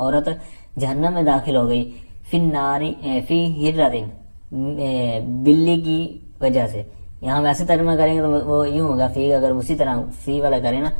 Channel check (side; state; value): both; inverted; correlation -1.00